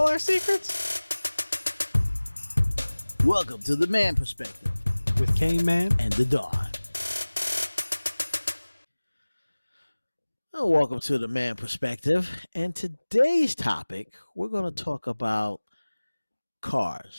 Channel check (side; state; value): both; inverted; correlation -1.00